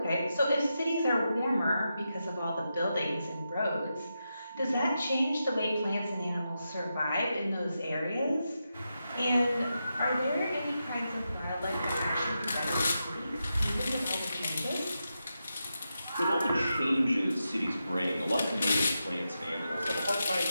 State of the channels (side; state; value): both; inverted; correlation -0.88